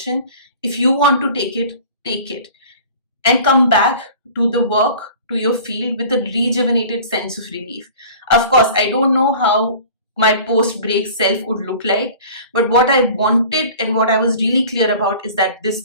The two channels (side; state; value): both; inverted; correlation -0.43